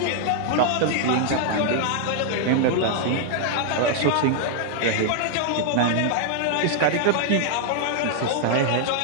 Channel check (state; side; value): different; both; correlation 0.00